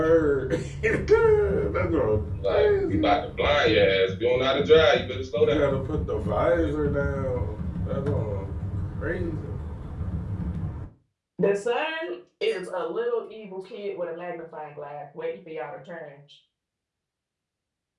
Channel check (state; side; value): identical; both; correlation 1.00